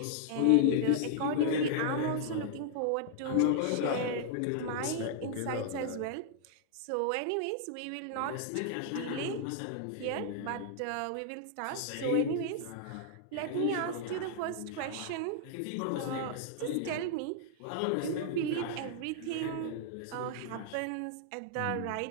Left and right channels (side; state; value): both; different; correlation -0.01